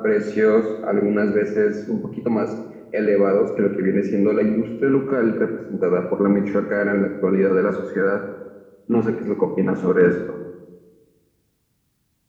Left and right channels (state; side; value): identical; both; correlation 1.00